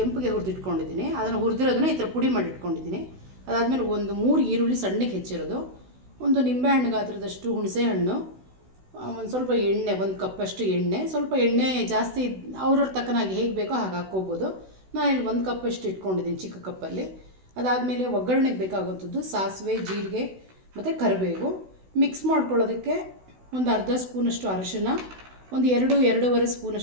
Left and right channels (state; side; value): late; left; 16 ms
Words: ಹುರಿದಿಟ್ಕೊಂಡಿದ್ದೀನಿ. ಅದನ್ನು ಹುರಿದಿರೋದನ್ನ ಈ ಥರ ಪುಡಿ ಮಾಡಿಟ್ಕೊಂಡಿದ್ದೀನಿ. ಅದಾದಮೇಲೆ ಒಂದು 3 ಈರುಳ್ಳಿ ಸಣ್ಣಗೆ ಹೆಚ್ಚಿರೋದು, ಒಂದು ನಿಂಬೆಹಣ್ಣು ಗಾತ್ರದಷ್ಟು ಹುಣಸೆ ಹಣ್ಣು, ಒಂದು ಸ್ವಲ್ಪ ಎಣ್ಣೆ, 1 ಕಪ್ಪಷ್ಟು ಎಣ್ಣೆ. ಸ್ವಲ್ಪ ಎಣ್ಣೆ ಜಾಸ್ತಿ ಅವ್ರವ್ರ ತಕ್ಕನಾಗಿ ಹೇಗೆ ಬೇಕೋ ಹಾಗೆ ಹಾಕ್ಕೋಬೋದು. ನಾನು ಇಲ್ಲಿ 1 ಕಪ್ಪಷ್ಟು ಇಟ್ಕೊಂಡಿದ್ದೀನಿ ಚಿಕ್ಕ ಕಪ್ಪಲ್ಲಿ. ಅದಾದಮೇಲೆ ಒಗ್ಗರಣೆಗೆ ಬೇಕಾಗುವಂಥದ್ದು ಸಾಸಿವೆ, ಜೀರಿಗೆ ಮತ್ತು ಕರಿಬೇವು. ಮಿಕ್ಸ್ ಮಾಡ್ಕೊಳ್ಳೋದಕ್ಕೆ ಒಂದು ಅರ್ಧ ಸ್ಪೂನಷ್ಟು ಅರಿಶಿನ, ಒಂದು 2-2.5